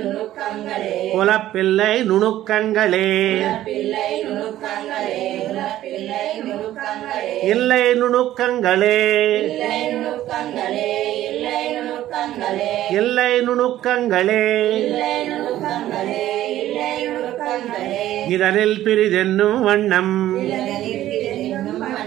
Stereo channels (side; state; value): left; quieter; 13.6 dB